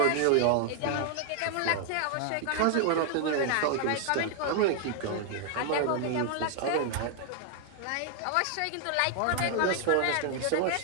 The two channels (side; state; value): both; different; correlation 0.00